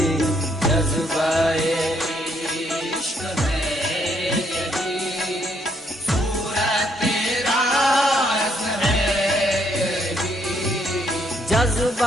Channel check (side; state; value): both; normal; correlation 0.71